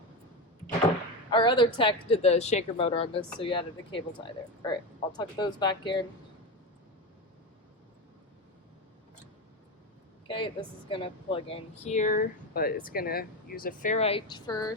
Our other tech did the shaker motor on this, so you added a cable tie there. All right, I'll tuck those back in. Okay, this is going to plug in here, but it's going to use a ferrite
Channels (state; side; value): normal; both; correlation 0.18